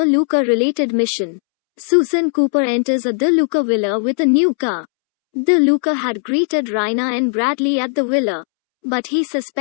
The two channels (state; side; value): silent; right; 68 dB below the other